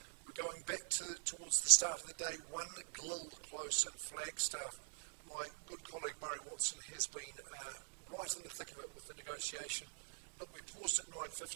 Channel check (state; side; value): silent; left; digital silence